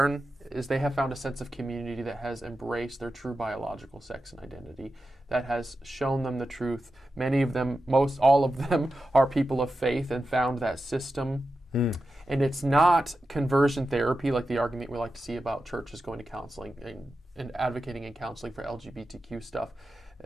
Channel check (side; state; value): both; normal; correlation 0.91